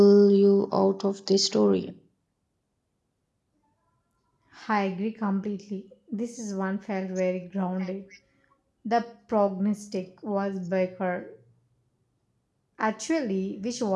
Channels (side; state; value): both; identical; correlation 1.00